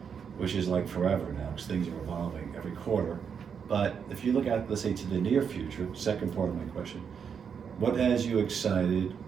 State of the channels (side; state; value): left; quieter; 6.9 dB